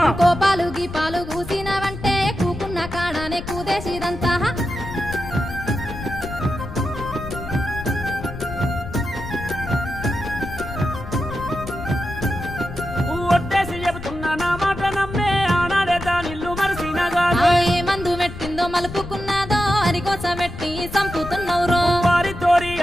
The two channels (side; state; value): left; noise; rumble, 11 dB below the sound